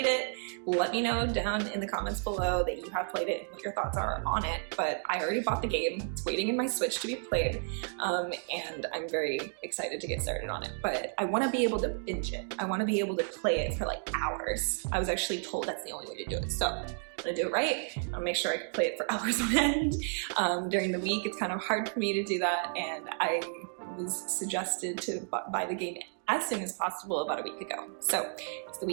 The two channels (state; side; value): silent; left; 56 dB below the other